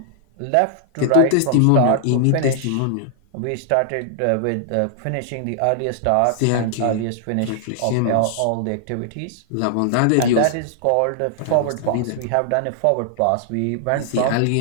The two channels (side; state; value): both; different; correlation -0.01